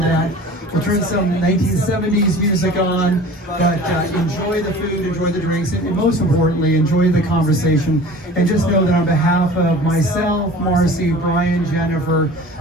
We'll turn some 1970s music on, but enjoy the food, enjoy the drinks, and most importantly, enjoy the conversation. And just know that on behalf of myself, Marcy, Brian, Jennifer,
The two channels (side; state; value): both; normal; correlation 0.42